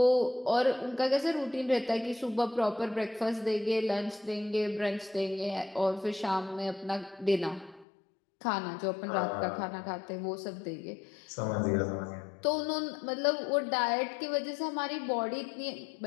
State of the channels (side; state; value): right; drops out; at 7.9 s